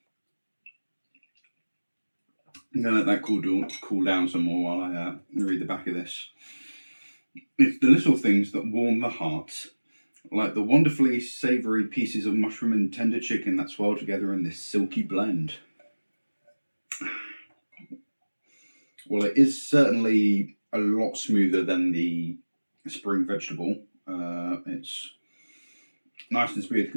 going to let that cool down some more while I read the back of this. It's the little things that warm the heart, like the wonderfully savoury pieces of mushroom and tender chicken that swirl together in this silky blend. Well, it is certainly a lot smoother than the spring vegetable. It's nice and smooth,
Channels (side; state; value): both; inverted; correlation -1.00